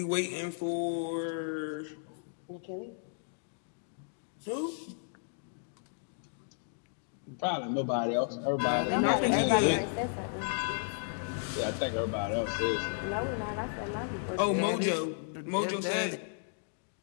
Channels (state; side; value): silent; right; digital silence